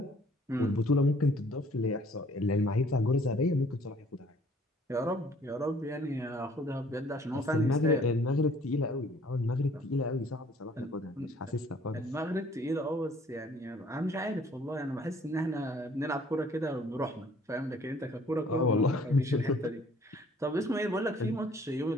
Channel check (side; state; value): both; normal; correlation 0.57